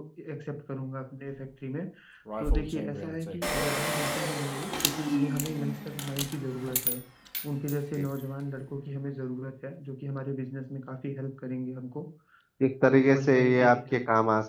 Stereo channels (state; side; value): identical; both; correlation 1.00